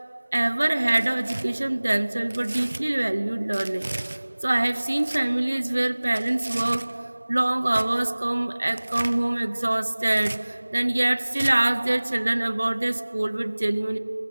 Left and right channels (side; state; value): both; inverted; correlation -1.00